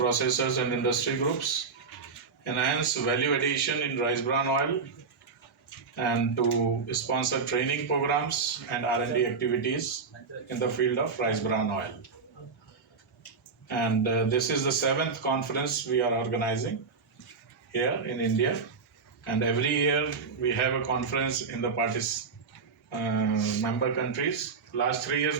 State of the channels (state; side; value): quieter; left; 5.0 dB